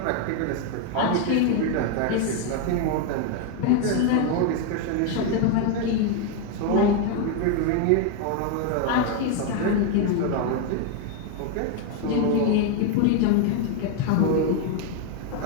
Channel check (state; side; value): different; both; correlation 0.01